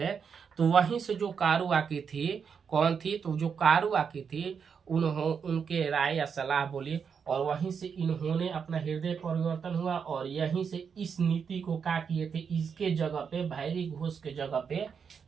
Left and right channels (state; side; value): quieter; left; 6.5 dB